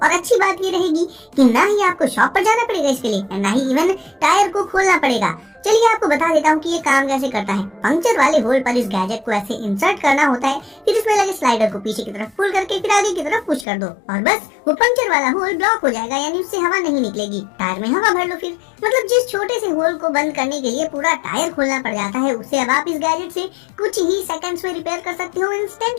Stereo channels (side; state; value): right; drops out; at 13.7 s